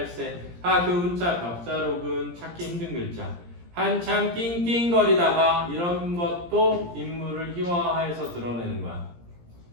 그 운자 벽자록은 찾기 힘든 글자. 한참 낑낑거리다가 이런 것도 인물을 희화화해서 드러내는 거야.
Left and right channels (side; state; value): left; late; 17 ms